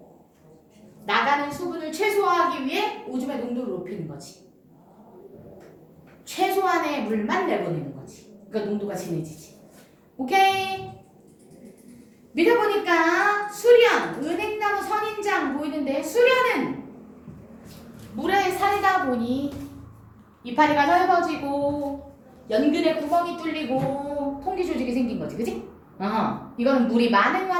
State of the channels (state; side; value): identical; both; correlation 1.00